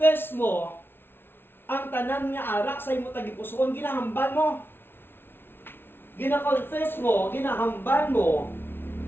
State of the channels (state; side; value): late; right; 0.11 ms